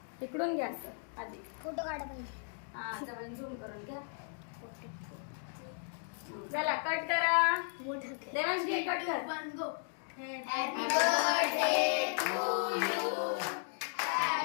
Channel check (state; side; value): silent; right; 54 dB below the other